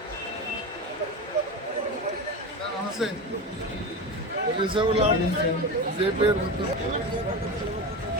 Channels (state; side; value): normal; both; correlation 0.24